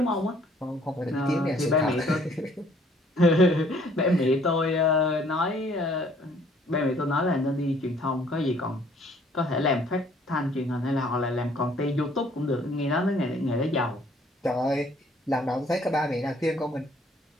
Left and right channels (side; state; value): both; normal; correlation 0.60